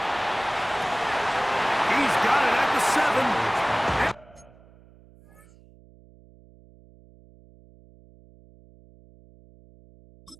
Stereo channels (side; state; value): right; noise; hum, 26 dB below the sound